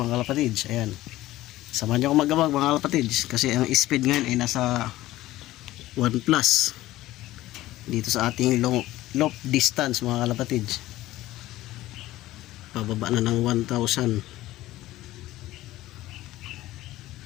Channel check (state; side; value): quieter; right; 16.1 dB